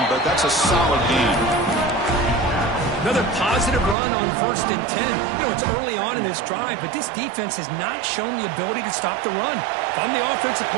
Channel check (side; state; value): left; drops out; at 4.0 s